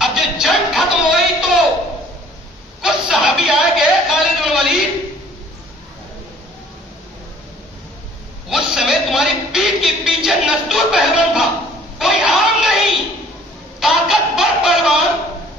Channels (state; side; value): normal; both; correlation 0.55